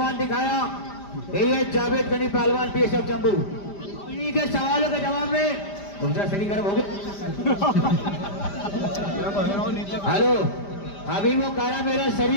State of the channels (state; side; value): late; right; 5.0 ms